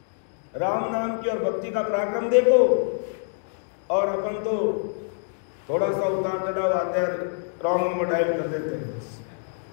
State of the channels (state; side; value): silent; right; digital silence